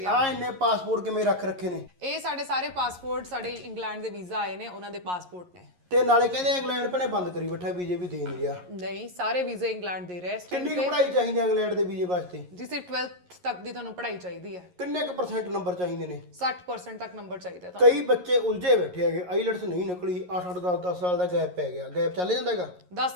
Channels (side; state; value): left; late; 11 ms